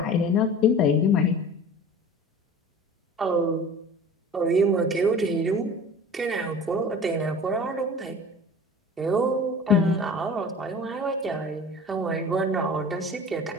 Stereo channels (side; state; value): both; normal; correlation 0.40